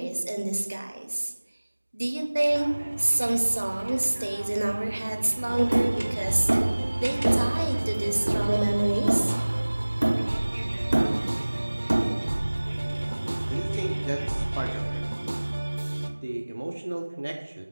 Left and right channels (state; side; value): inverted; both; correlation -1.00